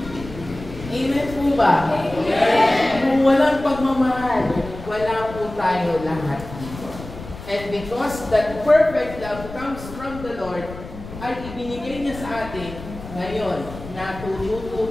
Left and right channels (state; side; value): noise; left; rumble, 13 dB below the sound